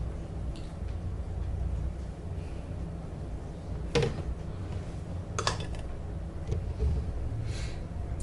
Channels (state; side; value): identical; both; correlation 1.00